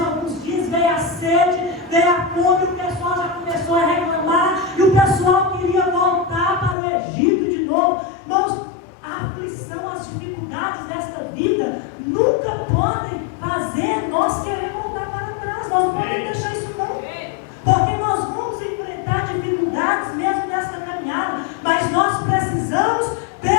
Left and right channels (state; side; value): drops out; right; at 6.8 s